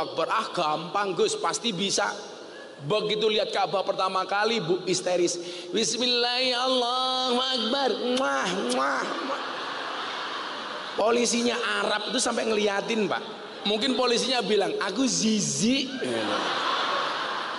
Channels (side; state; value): both; identical; correlation 1.00